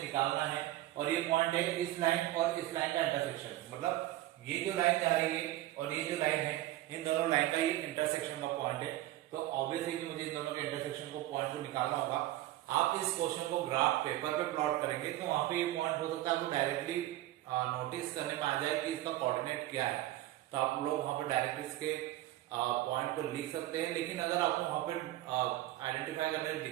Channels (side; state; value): left; quieter; 15.4 dB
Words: निकालना है और ये पॉइंट है इस लाइन और इस लाइन का इंटरसेक्शन, मतलब ये जो लाइन जा रही है और ये जो लाइन है, इन दोनों लाइन का ये इंटरसेक्शन का पॉइंट है। तो ऑब्वियसली कि मुझे इन दोनों के इंटरसेक्शन को पॉइंट को निकालना होगा। आप इस क्वेश्चन को ग्राफ पेपर पे प्लॉट करेंगे तो वहां पे ये पॉइंट हो सकता है आपको डायरेक्टली नोटिस करने में आ जाए कि इसका कोऑर्डिनेट क्या है, तो आप लोग वहां पर डायरेक्ट इसके पॉइंट को लिख सकते हैं। लेकिन अगर आपको वहां पर आइडेंटिफाई करने में